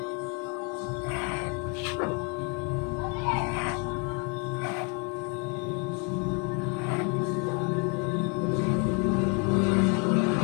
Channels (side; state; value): right; quieter; 34.1 dB